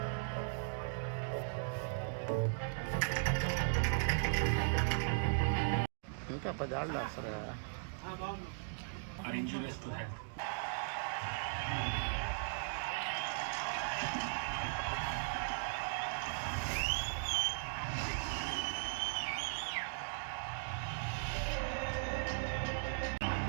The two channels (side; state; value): left; silent; digital silence